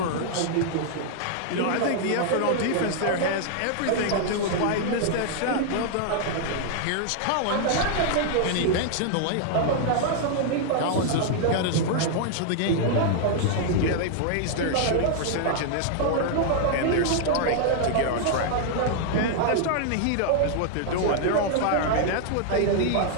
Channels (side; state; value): both; different; correlation -0.01